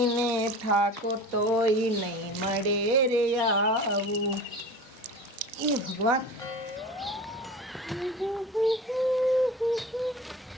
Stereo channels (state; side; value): normal; both; correlation 0.36